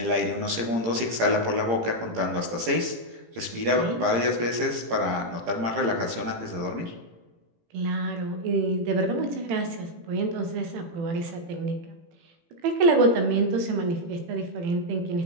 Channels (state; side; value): late; left; 18 ms